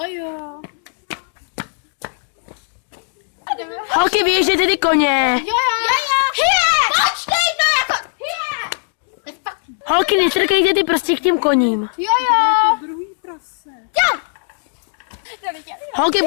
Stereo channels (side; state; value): right; silent; digital silence